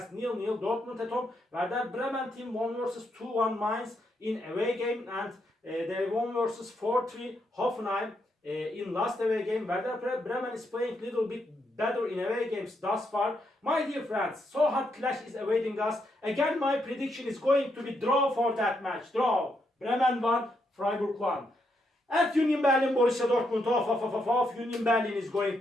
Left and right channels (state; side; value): normal; both; correlation 0.79